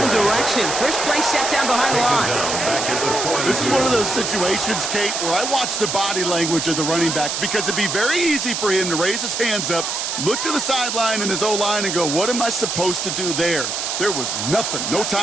direction. First play set down behind the line. This is one of those situations, Kate, where I watch the body language of the running back, because it'd be very easy for him to raise his hands up, look to the sideline and his O-line and go, what am I supposed to do there? There was nothing, no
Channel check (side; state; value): right; noise; hiss, 2 dB below the sound